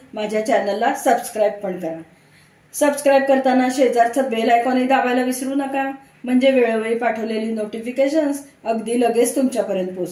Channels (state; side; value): identical; both; correlation 1.00